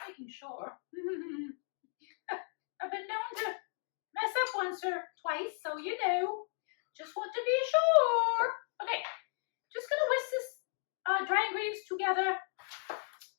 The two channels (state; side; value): silent; right; 54 dB below the other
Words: making sure. I've been known to mess up once or twice, so you know. Just want to be sure. Okay, just gonna whisk this dry ingredients together